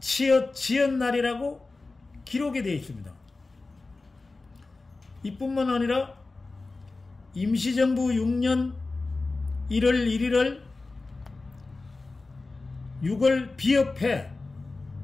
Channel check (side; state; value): right; quieter; 3.5 dB